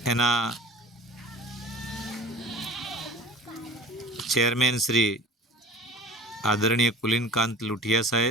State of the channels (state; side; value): normal; both; correlation 0.41